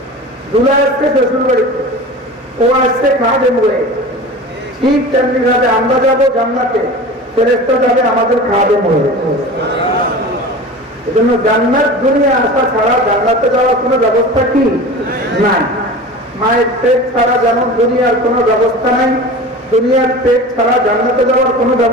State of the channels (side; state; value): both; normal; correlation 0.35